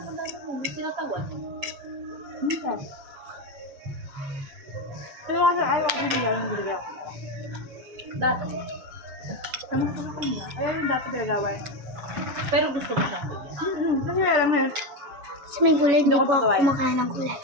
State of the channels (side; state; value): left; late; 6.8 ms